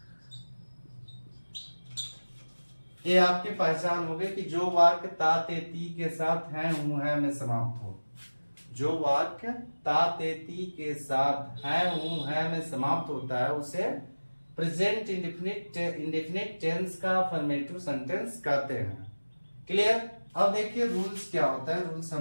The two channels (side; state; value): both; inverted; correlation -1.00